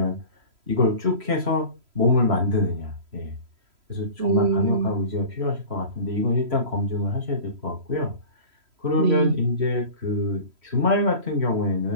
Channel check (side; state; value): left; late; 3.1 ms